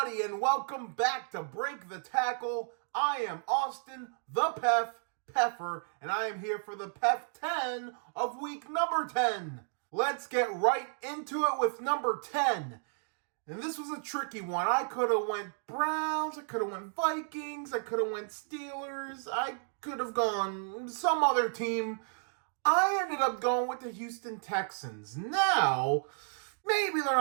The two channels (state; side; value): silent; left; digital silence